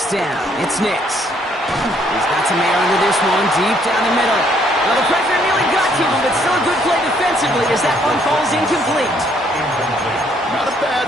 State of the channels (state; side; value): normal; both; correlation 0.67